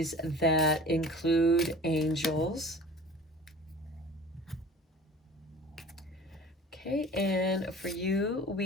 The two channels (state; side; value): normal; both; correlation 0.42